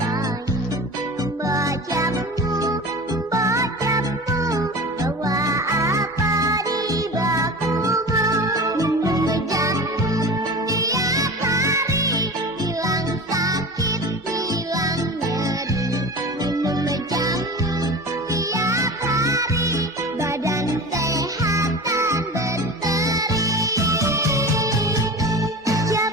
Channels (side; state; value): both; normal; correlation 0.33